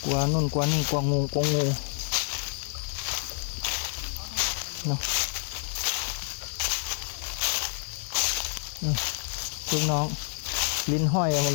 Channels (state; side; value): silent; right; digital silence